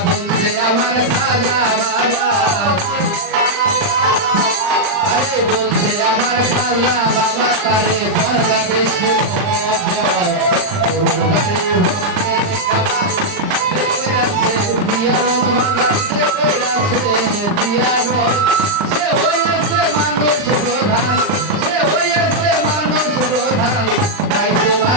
বলছে আমার খাজা বাবা আরে বলছে আমার খাজা বাবা তারে দরগা বেশি মোহব্বত গরুর বাড়ি ভক্তে কইরাছে দিয়ারত বাজাতে কইরাছে দিয়ারত সে হইছে মানুষ প্রধান সে হইছে মানুষ প্রধান পাইছে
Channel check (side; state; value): left; late; 39 ms